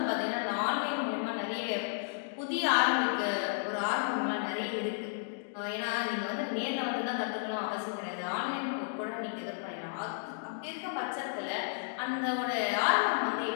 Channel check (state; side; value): silent; right; digital silence